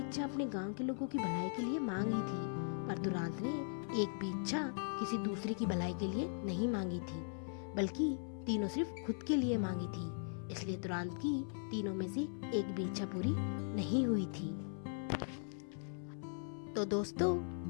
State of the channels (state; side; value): silent; right; 52 dB below the other